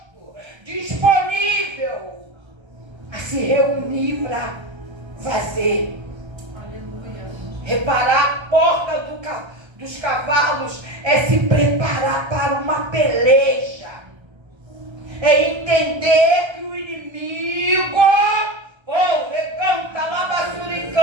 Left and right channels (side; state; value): left; late; 1.3 ms